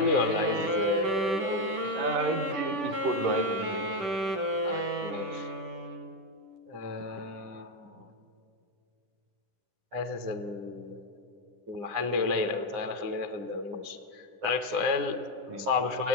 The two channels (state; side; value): late; left; 10 ms